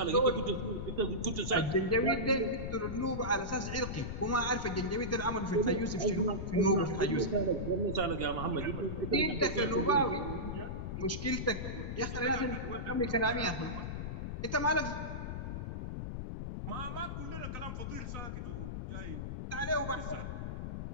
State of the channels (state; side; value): noise; left; rumble, 5 dB below the sound